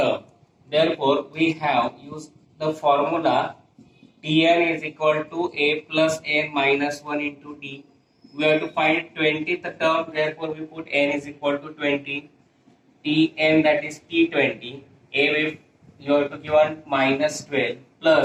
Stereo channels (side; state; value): both; identical; correlation 1.00